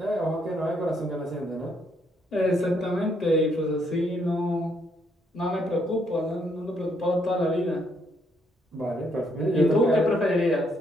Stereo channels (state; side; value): normal; both; correlation 0.72